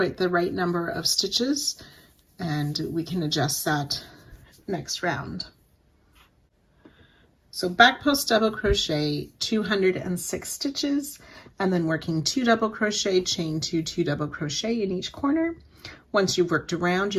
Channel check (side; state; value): both; identical; correlation 1.00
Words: the right number of stitches, and we can adjust that next round. So back post double crochet 206 stitches, and then working 2 double crochet, chain 2, 2 double crochet in each corner. Once you've worked around,